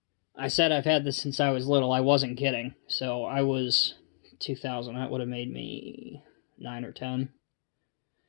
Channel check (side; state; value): right; silent; digital silence